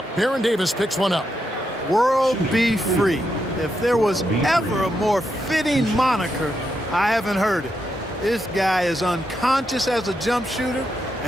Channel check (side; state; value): both; normal; correlation 0.83